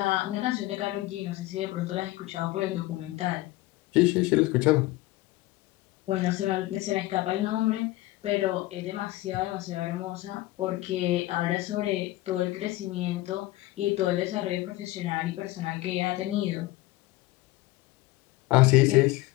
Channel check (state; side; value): quieter; right; 18.2 dB